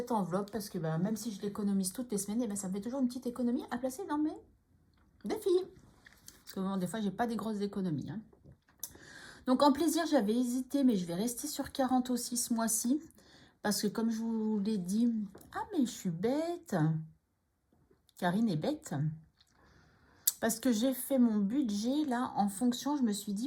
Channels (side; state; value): both; identical; correlation 1.00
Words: enveloppe parce que même si je l'économise toutes les semaines, ça me fait toujours une petite économie à placer dans mes défis. Parce que bon, des fois, j'ai pas des grosses économies. Hein. Donc en plaisir, j'avais hésité, mais je vais rester sur 40 aussi ce mois-ci. Parce que comme je vous l'ai dit... Ah, mais je suis bête. Karine est bête. Parce que j'ai fait mon budget, là, en fonction, je me suis dit,